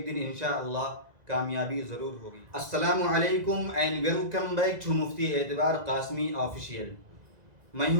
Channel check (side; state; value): left; late; 2.0 ms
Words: دن انشاءاللہ کامیابی ضرور ہوگی۔ السلام علیکم اینڈ ویلکم بیک ٹو مفتی اعتبار قاسمی آفیشیل۔ میں